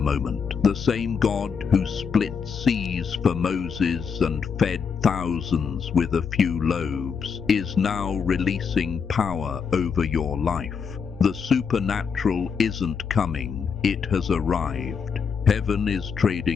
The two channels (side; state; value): right; quieter; 6.2 dB